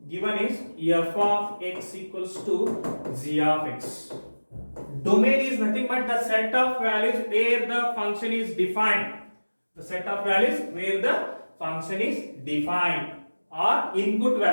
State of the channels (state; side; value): inverted; both; correlation -1.00